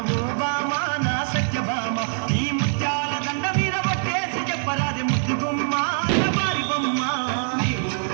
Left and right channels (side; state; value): left; silent; 63 dB below the other